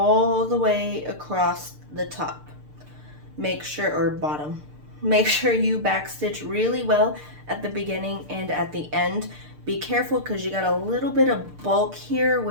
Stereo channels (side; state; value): left; late; 6.7 ms